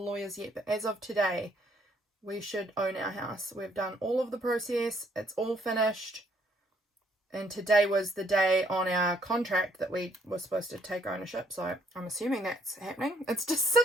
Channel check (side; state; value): both; normal; correlation 0.67